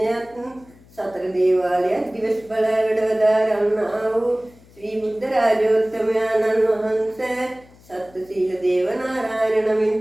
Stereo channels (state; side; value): noise; left; hum, 26 dB below the sound